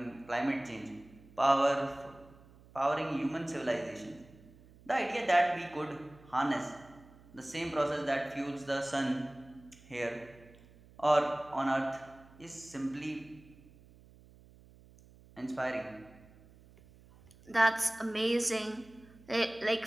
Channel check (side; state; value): right; noise; hum, 24 dB below the sound